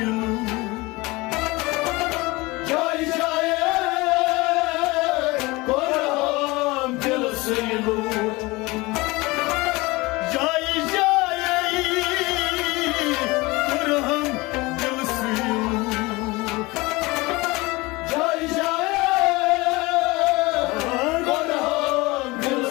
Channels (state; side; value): quieter; right; 22.8 dB